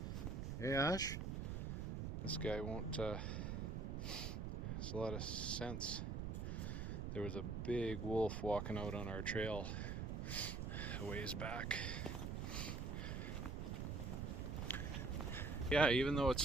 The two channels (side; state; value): right; noise; rumble, 2 dB below the sound